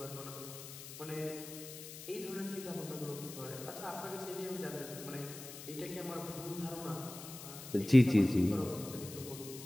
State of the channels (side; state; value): left; noise; hiss, 12 dB below the sound